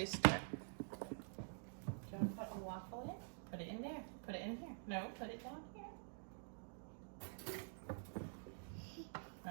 Do you want to put a waffle in? Put it in there. Put it in here. No, put it down here.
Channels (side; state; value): left; silent; digital silence